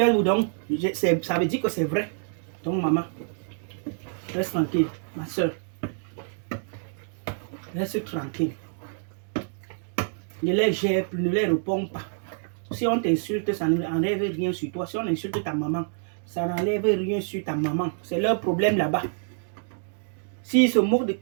donc ça veut dire que c'est vrai. Donc maman, reste tranquille, ma soeur. Reste tranquille. Ne les gère plus, ne les réponds pas. Si on t'insulte, ça n'enlève rien sur toi. Si on insulte ta maman, ça n'enlève rien sur ta maman. C'est leur problème là-bas. S'ils se moquent de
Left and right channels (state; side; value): silent; left; 60 dB below the other